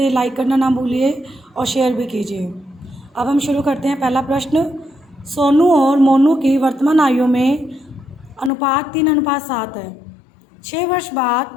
लाइक करना ना भूलिए और शेयर भी कीजिए। अब हम शुरू करते हैं। पहला प्रश्न, सोनू और मोनू की वर्तमान आयु में अनुपात 3:7 है। 6 वर्ष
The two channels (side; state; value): right; drops out; at 8.5 s